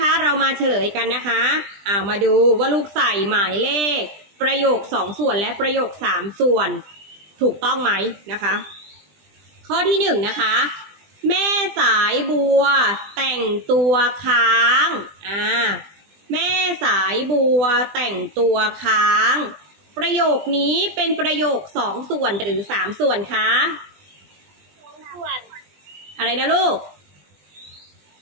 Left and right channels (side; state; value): left; late; 20 ms